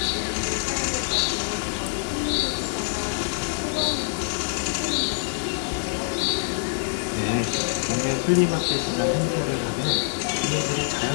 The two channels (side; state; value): right; silent; digital silence